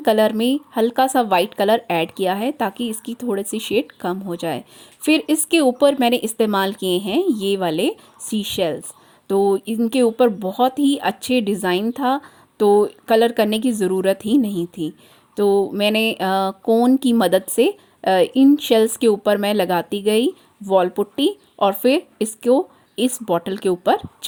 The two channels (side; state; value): both; identical; correlation 1.00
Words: में हल्का सा वाइट कलर ऐड किया है ताकि इसकी थोड़ी सी शेड कम हो जाए। फिर इसके ऊपर मैंने इस्तेमाल किए हैं ये वाले सी शेल्स। तो इनके ऊपर बहुत ही अच्छे डिज़ाइन था, तो कलर करने की ज़रूरत ही नहीं थी। तो मैंने कोन की मदद से इन शेल्स के ऊपर मैं लगाती गई वॉल पुट्टी और फिर इसको इस बॉटल के ऊपर